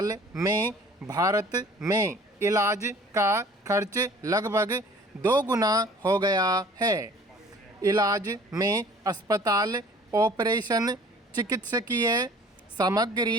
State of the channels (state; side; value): normal; both; correlation 0.50